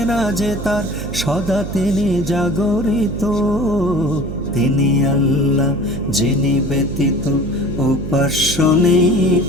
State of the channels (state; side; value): noise; right; hum, 7 dB below the sound